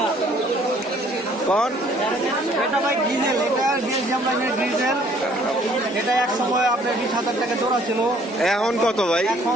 কোন? এটা ভাই ডিজেল, এটা বেলজিয়াম লাইনের ডিজেল। এটা এক সময় আপনার 20,000 টাকা জোড়া ছিল, এখন কত ভাই?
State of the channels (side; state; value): both; normal; correlation 0.60